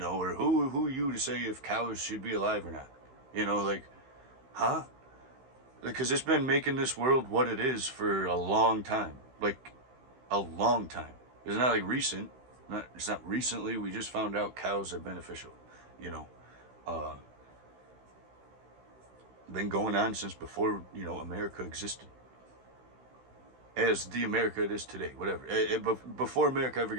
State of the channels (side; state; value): left; late; 16 ms